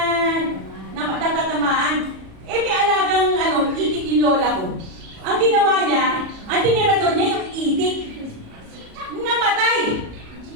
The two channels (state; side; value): late; left; 37 ms